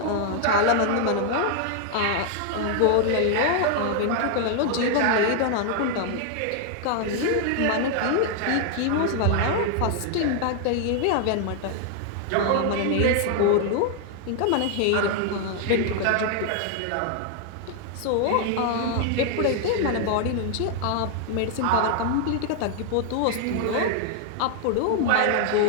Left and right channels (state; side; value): different; both; correlation 0.00